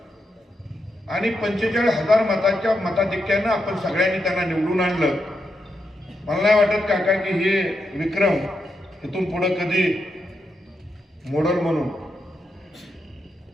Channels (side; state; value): both; normal; correlation 0.84